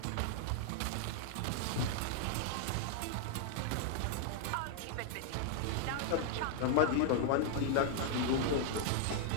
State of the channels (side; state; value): both; different; correlation 0.00